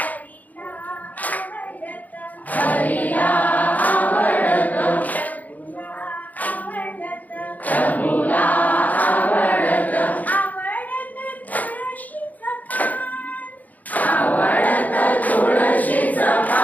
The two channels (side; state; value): right; late; 0.079 ms